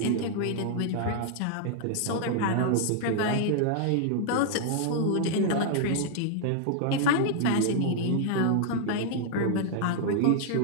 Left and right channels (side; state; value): both; different; correlation -0.01